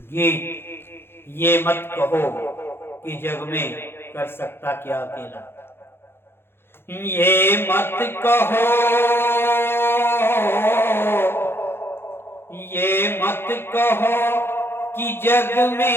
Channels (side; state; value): right; late; 0.11 ms